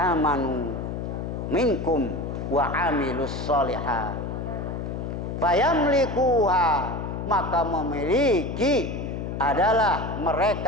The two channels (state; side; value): noise; left; hum, 5 dB below the sound